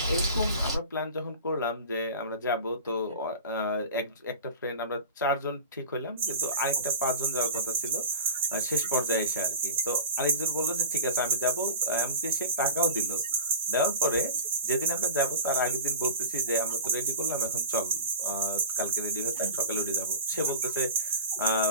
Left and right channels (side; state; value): both; inverted; correlation -0.35